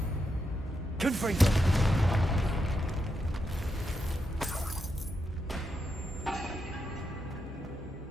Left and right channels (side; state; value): both; normal; correlation 0.84